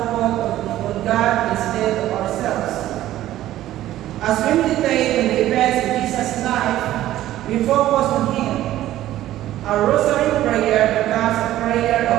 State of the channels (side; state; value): left; quieter; 13.9 dB